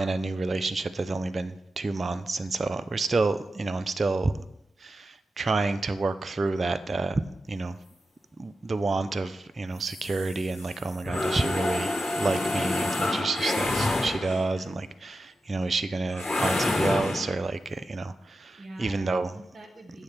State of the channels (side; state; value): both; normal; correlation 0.91